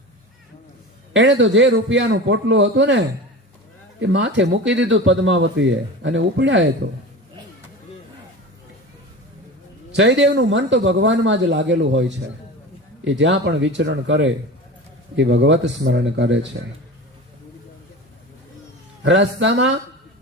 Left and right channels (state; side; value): normal; both; correlation 0.31